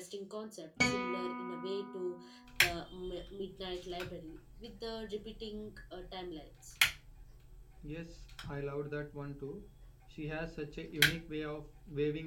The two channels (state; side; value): identical; both; correlation 1.00